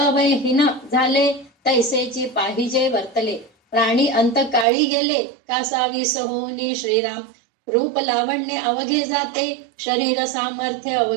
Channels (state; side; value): drops out; left; at 4.7 s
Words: झाले तैसेची पाहिजे वर्तले. प्राणी अंत काळी गेले कासा विस होनी श्रीराम. रूप लावण्य अवघे जाते शरीर सामर्थ्य